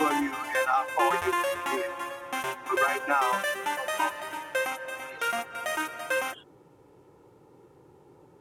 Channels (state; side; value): identical; both; correlation 1.00